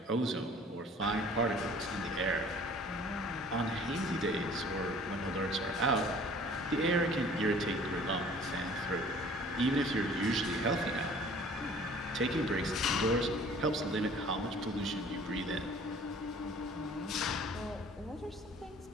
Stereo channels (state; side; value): normal; both; correlation 0.51